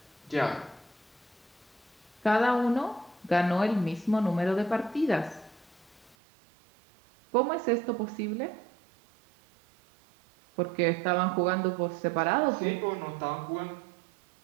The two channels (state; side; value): drops out; left; at 6.2 s